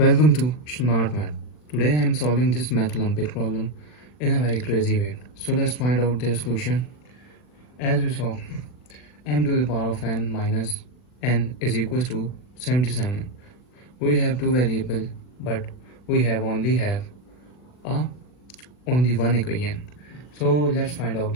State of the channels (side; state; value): right; late; 40 ms